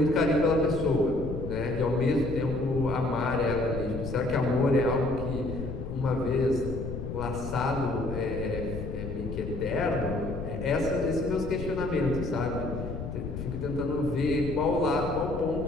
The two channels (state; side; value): noise; left; rumble, 6 dB below the sound